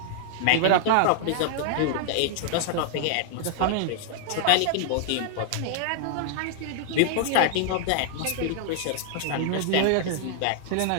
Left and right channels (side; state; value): both; different; correlation -0.01